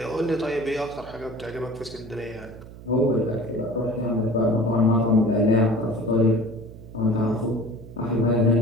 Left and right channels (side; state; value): right; noise; hum, 16 dB below the sound